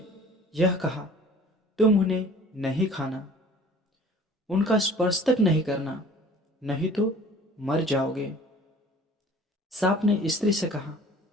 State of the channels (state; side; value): normal; both; correlation 0.48